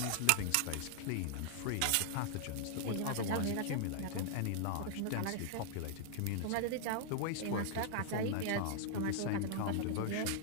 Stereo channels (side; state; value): both; different; correlation -0.01